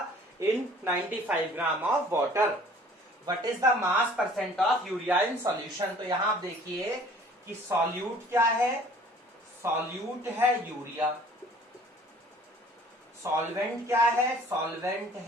in 95 gram of water. What is the mass percent of urea in solution. तो यहां आप देखिए कि सॉल्यूट क्या है, सॉल्यूट है यूरिया, सॉल्वेंट क्या है, सॉल्वेंट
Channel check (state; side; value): normal; both; correlation 0.52